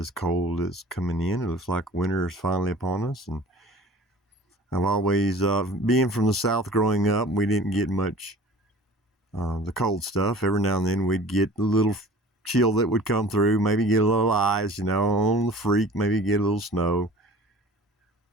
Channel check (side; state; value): both; normal; correlation 0.45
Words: cold that's coming in. It looks like winter is finally upon us, and I've always, being from the South growing up, we didn't get much the cold stuff. Every now and then we'd get a little chill that would come through, maybe get a little ice, on the freak, maybe get a little snow.